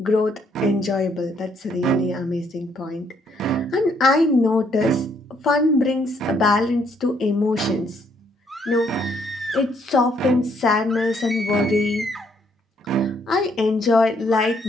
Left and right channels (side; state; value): both; normal; correlation 0.69